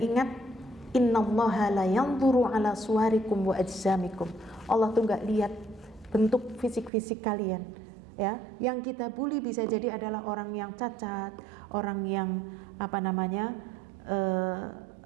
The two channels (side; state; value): left; drops out; at 6.9 s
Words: ingat, innallaha la yanzuru ala suwarikum wa ajsamikum. Allah tuh enggak lihat bentuk fisik-fisik kalian, ya. Yang kita bully bisa jadi adalah orang yang cacat, orang yang